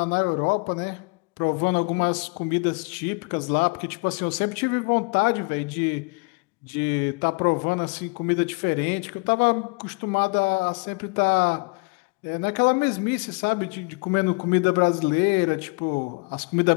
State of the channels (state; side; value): quieter; right; 31.0 dB